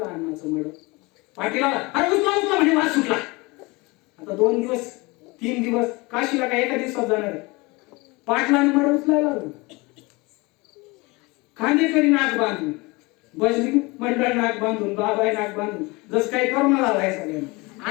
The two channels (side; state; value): right; quieter; 24.8 dB